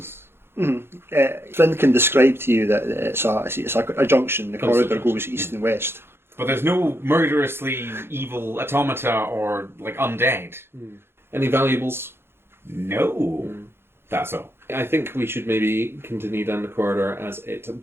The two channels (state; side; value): late; left; 0.11 ms